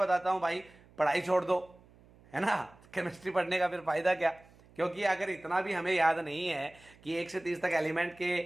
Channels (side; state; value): right; noise; hum, 26 dB below the sound